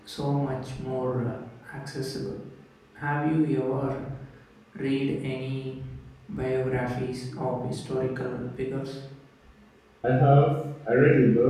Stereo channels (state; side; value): identical; both; correlation 1.00